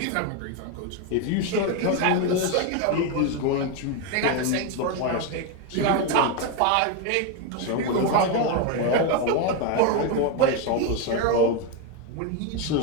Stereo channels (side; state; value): both; different; correlation 0.02